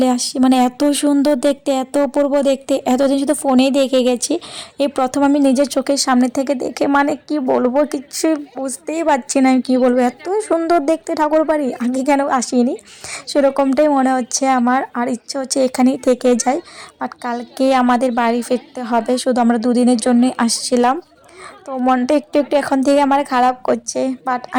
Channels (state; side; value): identical; both; correlation 1.00